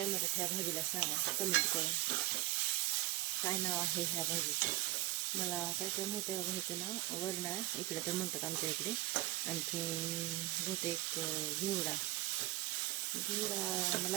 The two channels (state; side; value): quieter; left; 18.1 dB